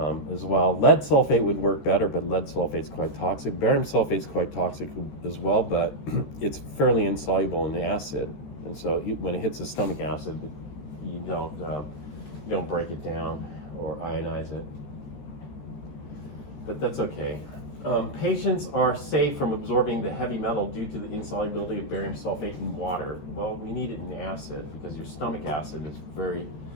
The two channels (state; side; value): late; right; 14 ms